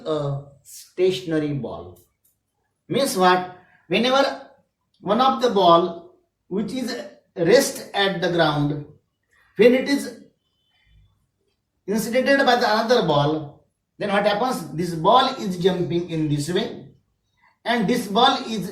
a stationary ball. Means what? Whenever one of the ball which is rest at the ground, when it is incidented by the another ball, then what happens? This ball is jumping in this way, and this ball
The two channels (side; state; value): both; identical; correlation 1.00